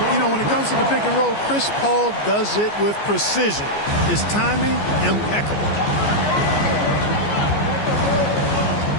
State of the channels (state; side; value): late; right; 14 ms